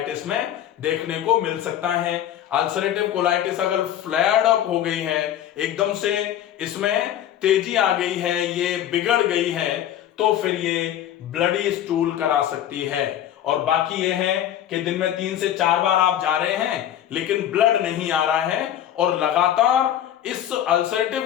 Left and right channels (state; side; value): quieter; right; 11.2 dB